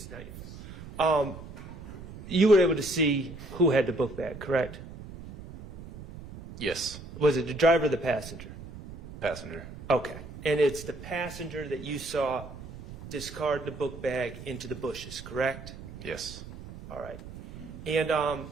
not your fault. You were able to see who had the book bag, correct? Yes. Was it the driver or the passenger? Passenger. Okay. And it's the passenger that you saw discard the book bag into the bushes, correct? Yes. All right. And,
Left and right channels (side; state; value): right; noise; rumble, 14 dB below the sound